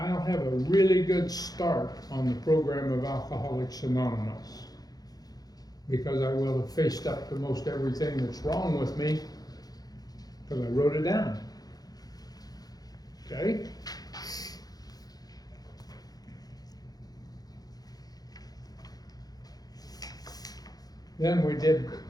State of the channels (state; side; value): late; right; 0.19 ms